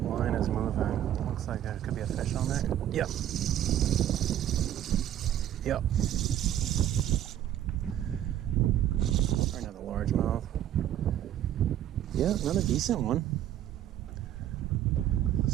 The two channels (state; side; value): quieter; left; 11.4 dB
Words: Line is moving. Looks like there could be a fish on there. Yep. Yep. Or another largemouth. Yeah, another decent one.